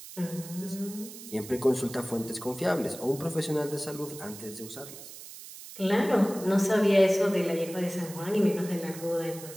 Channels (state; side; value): noise; right; hiss, 14 dB below the sound